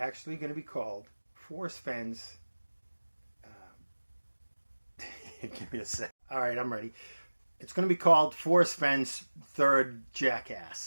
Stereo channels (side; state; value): both; inverted; correlation -1.00